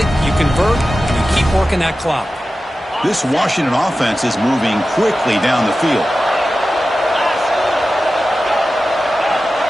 You convert, and you keep working that clock. This Washington offense is moving quickly down the field.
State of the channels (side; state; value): both; normal; correlation 0.94